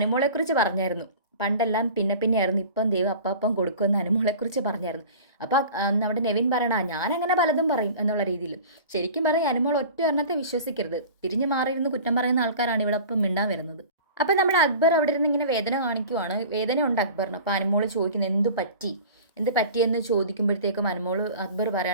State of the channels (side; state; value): both; inverted; correlation -0.40